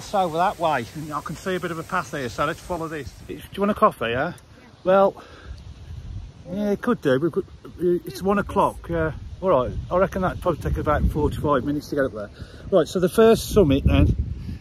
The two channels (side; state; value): both; identical; correlation 1.00